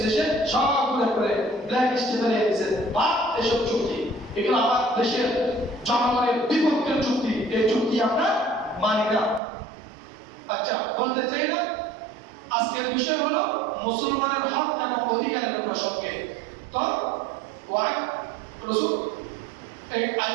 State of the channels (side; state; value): left; drops out; at 9.4 s